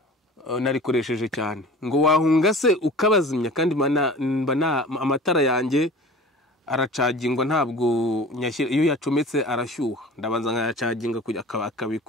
narikoresheje cyane. Ngo wahunga se ukabazimya, kandi amatara yanjye aracagingwa, ntabwo nyashyira. Iyo yacometse arashyuha, ndabanza nkayacaginga kujya akabika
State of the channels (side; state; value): both; normal; correlation 0.41